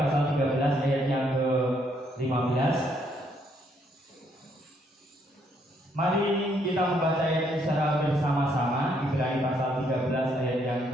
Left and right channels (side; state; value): both; normal; correlation 0.71